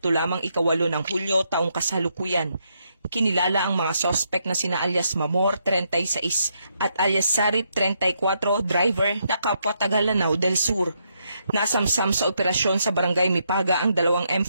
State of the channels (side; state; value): both; inverted; correlation -0.78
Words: lamang 8 ng Hulyo taong kasalukuyan. Kinilala ang mga sospek na sina alias Mamor, 36 at alias Sarip, 34, driver na kapwa taga Lanao del Sur. Nasamsam sa operasyon sa Barangay Mipaga ang dalawang